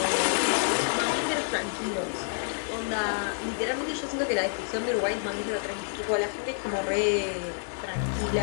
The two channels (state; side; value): silent; right; digital silence